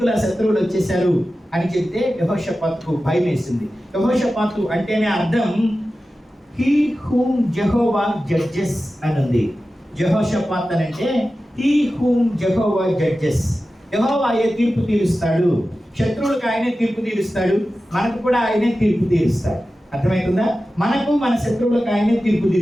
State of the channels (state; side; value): normal; both; correlation 0.94